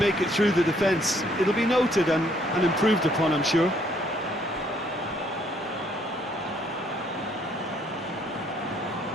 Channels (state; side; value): normal; both; correlation 0.66